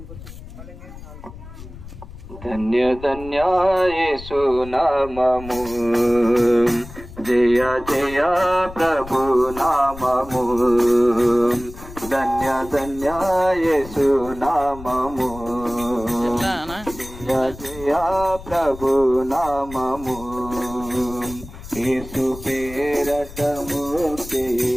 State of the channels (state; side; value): noise; left; rumble, 15 dB below the sound